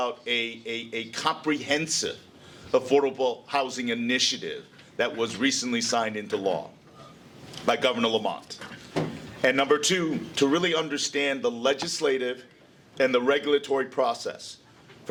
a comprehensive affordable housing initiative that was recently signed into law by Governor Lamont. And number two, to really understand the legislative and the regulatory process.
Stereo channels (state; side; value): identical; both; correlation 1.00